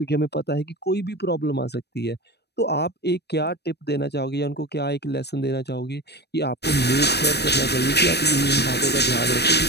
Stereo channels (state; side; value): late; right; 0.48 ms